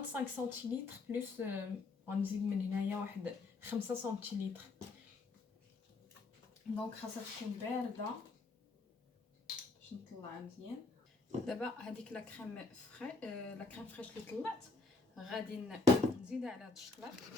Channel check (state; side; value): quieter; right; 3.7 dB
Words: 25 سنتيلتر بلس غنزيد من هنايا واحد 5 سنتيلتر. دونك خاصها تكون بارده باش نطلعها مزيان. دابا هذيك لا كريم لا كريم فريش اللي طلعت غادي نزيدها على هاد الشكلاط